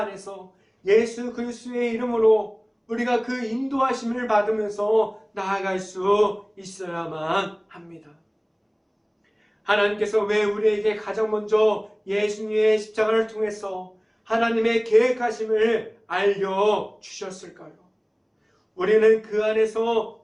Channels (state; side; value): identical; both; correlation 1.00